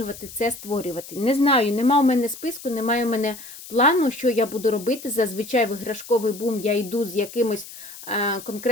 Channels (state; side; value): noise; left; hiss, 15 dB below the sound